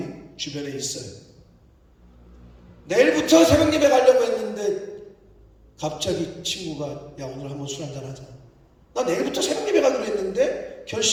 주변에 있어요. 내일부터 새벽 예배 가려고 했는데 갑자기 친구가 야 오늘 한번 술 한잔 하자. 나 내일부터 새벽 예배 가기로 했는데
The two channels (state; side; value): identical; both; correlation 1.00